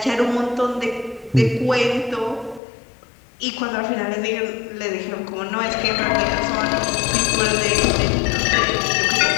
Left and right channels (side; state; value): right; drops out; at 2.6 s